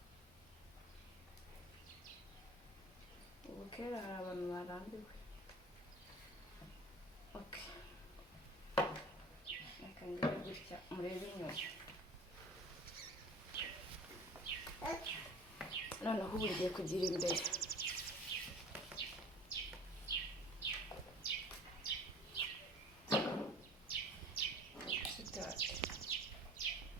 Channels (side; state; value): both; normal; correlation 0.43